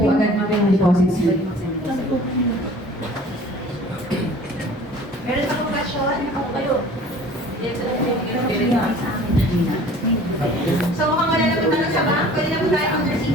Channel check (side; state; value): both; normal; correlation 0.47